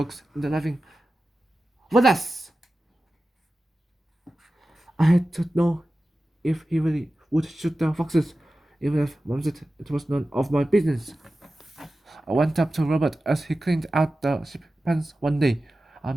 and laughing with us. I had to know if he really would shoot the foxes, even if Mom said it was none of my business. I went up to Robert as he cleaned out the sheep pens one day. I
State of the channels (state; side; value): normal; both; correlation 0.94